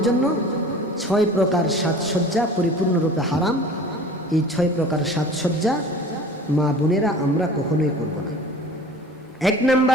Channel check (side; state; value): both; normal; correlation 0.43